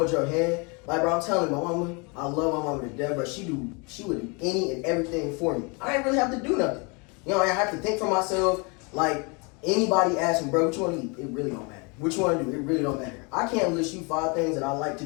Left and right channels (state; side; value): quieter; right; 31.2 dB